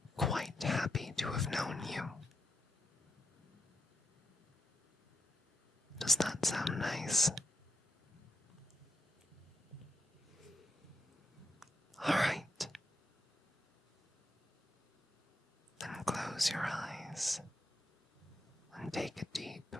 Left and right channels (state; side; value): normal; both; correlation 0.84